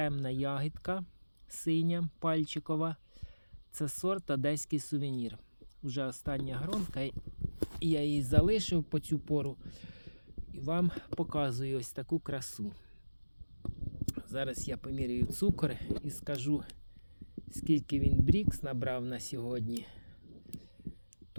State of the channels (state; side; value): inverted; both; correlation -1.00